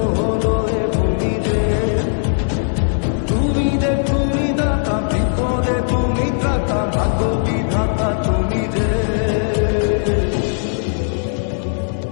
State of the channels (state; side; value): silent; right; digital silence